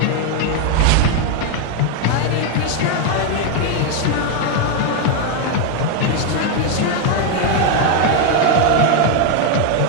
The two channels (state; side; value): different; both; correlation 0.01